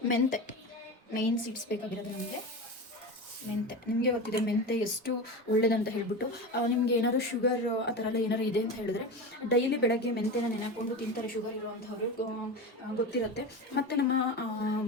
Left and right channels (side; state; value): both; normal; correlation 0.25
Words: ಮೆಂತೆ, ಮೇನ್ ಸೀಡ್ಸ್ ಬೇಕಾಗಿರೋದು ನಮಗೆ ಮೆಂತೆ. ನಿಮಗೆ ಗೊತ್ತಿದೆ ಮೆಂತೆ ಎಷ್ಟು ಒಳ್ಳೇದಂತ ಹೇಳ್ಬಿಟ್ಟು. ನಿಮಗೆ ಏನಾದ್ರು ಶುಗರ್ ಆ ಥರ ಎಲ್ಲ ಏನಾದ್ರು ಇದೆ ಅಂತ ಹೇಳಿದ್ರೆ ಡೈಲಿ ಬೆಳಗ್ಗೆ ಮೆಂತೆನ ನೆನೆಕೊಂಡು ತಿಂತಾರೆ ಶುಗರ್ ಇರೋವಂಥವ್ರು, ಗೊತ್ತಿರುತ್ತೆ. ಮತ್ತು ನಮ್ಮ